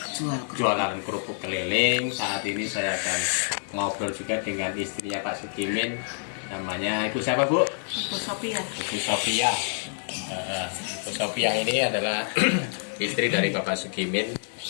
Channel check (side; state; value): right; silent; digital silence